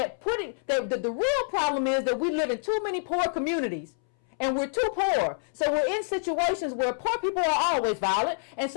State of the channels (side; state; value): right; silent; 60 dB below the other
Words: real problem is that we live in too many poor communities. And we're too poor. So we're in situations where poor people are always violent. And